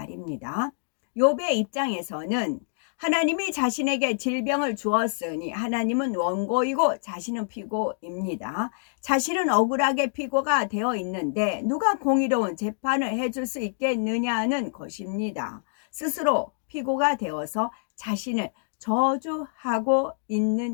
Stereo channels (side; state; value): right; silent; digital silence